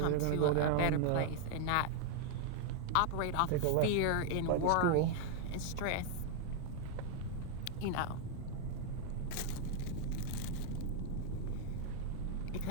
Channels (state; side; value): different; both; correlation 0.00